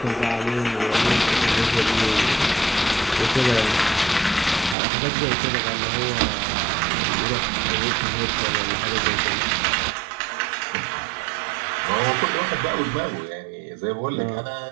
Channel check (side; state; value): left; drops out; at 4.8 s